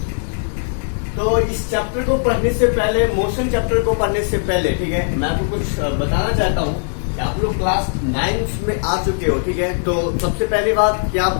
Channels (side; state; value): right; silent; digital silence